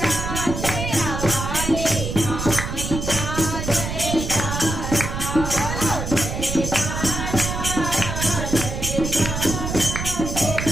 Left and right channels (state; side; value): noise; right; rumble, 4 dB below the sound